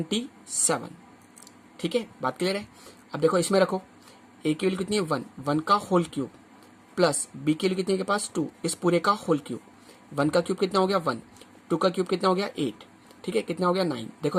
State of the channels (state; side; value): identical; both; correlation 1.00